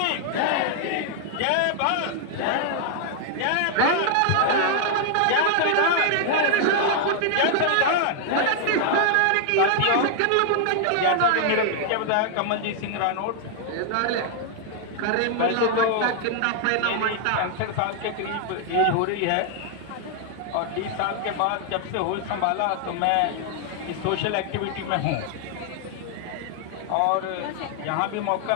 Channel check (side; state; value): both; different; correlation 0.00